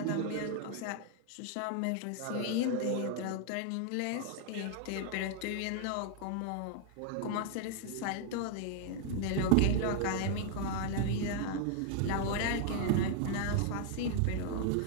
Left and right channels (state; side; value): different; both; correlation 0.00